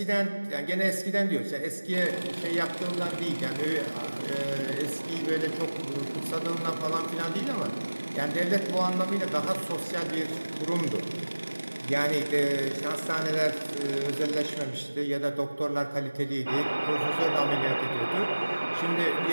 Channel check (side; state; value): both; inverted; correlation -1.00